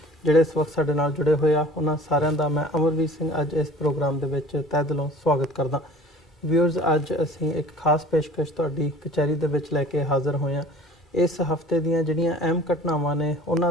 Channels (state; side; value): normal; both; correlation 0.46